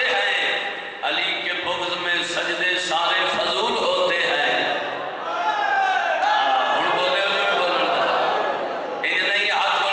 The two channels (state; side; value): identical; both; correlation 1.00